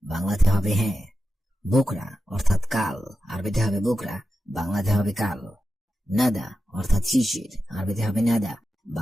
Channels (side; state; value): both; normal; correlation 0.91